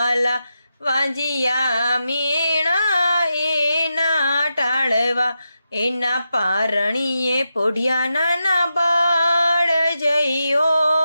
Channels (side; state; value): both; inverted; correlation -0.88